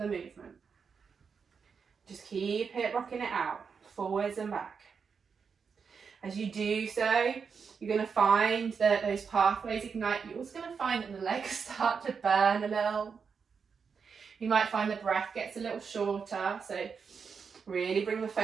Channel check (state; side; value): quieter; left; 5.9 dB